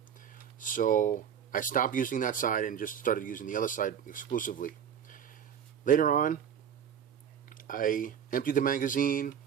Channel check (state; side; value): quieter; left; 8.4 dB